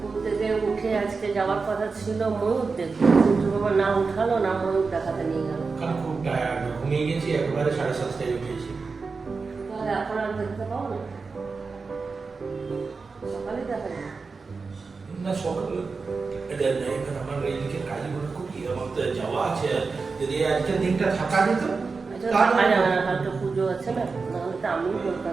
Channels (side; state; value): left; quieter; 4.5 dB